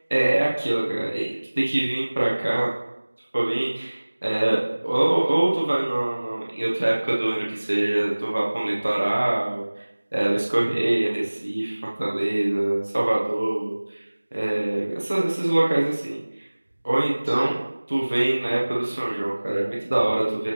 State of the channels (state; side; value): inverted; both; correlation -1.00